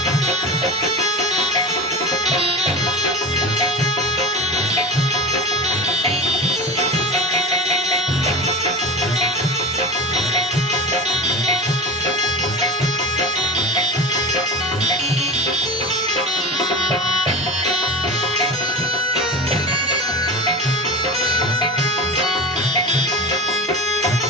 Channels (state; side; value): normal; both; correlation 0.30